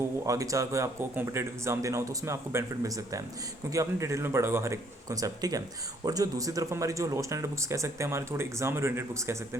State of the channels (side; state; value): both; normal; correlation 0.65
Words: वो आगे चल कर आपको कॉम्पिटेटिव एग्जाम देना हो तो उसमें आपको बेनिफिट मिल सकता है, क्योंकि आपने डिटेल में पढ़ा होगा हर एक कॉन्सेप्ट, ठीक है। और जो दूसरी तरफ हमारी जो लो स्टैंडर्ड बुक्स कह सकते हैं, हमारे थोड़े एग्जाम ओरिएंटेड बुक्स कह सकते